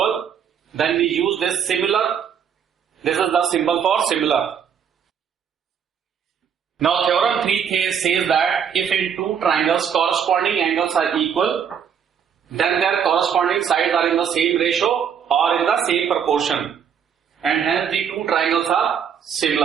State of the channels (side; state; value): left; quieter; 7.8 dB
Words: then we use this similar. This is the symbol for similar. Now theorem 3 says that if in two triangles corresponding angles are equal, then their corresponding sides are in the same ratio or in the same proportion, and hence the two triangles are